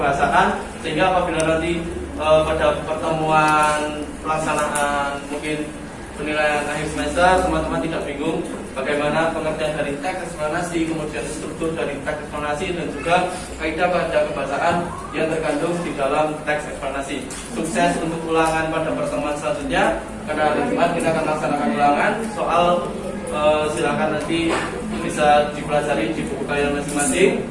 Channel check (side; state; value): both; identical; correlation 1.00